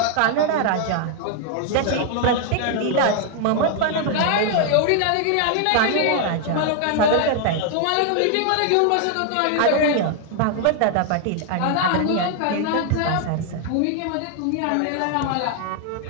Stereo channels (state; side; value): different; both; correlation 0.00